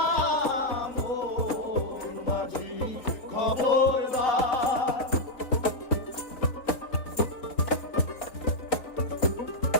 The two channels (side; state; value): right; late; 3.6 ms